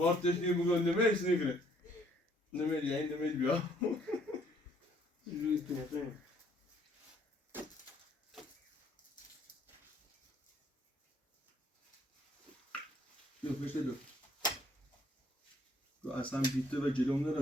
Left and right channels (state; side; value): normal; both; correlation 0.64